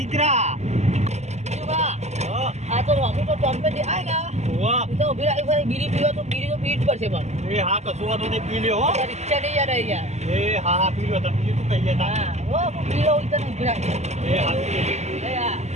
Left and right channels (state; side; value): late; left; 0.33 ms